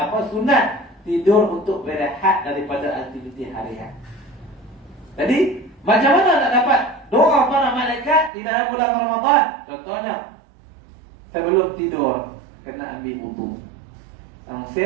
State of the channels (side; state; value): left; drops out; at 8.3 s